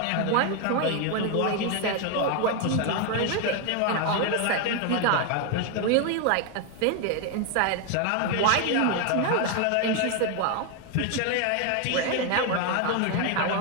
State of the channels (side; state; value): both; different; correlation 0.01